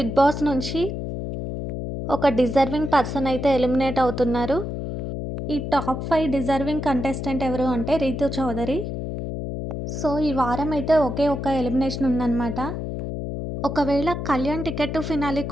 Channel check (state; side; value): noise; left; hum, 5 dB below the sound